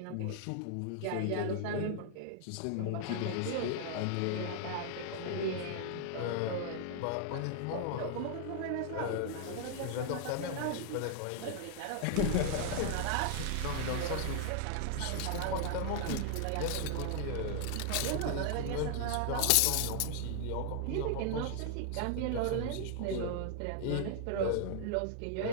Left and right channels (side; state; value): both; different; correlation 0.00